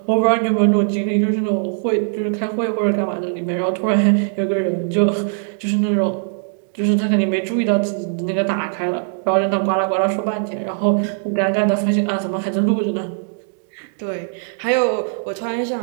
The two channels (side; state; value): left; silent; digital silence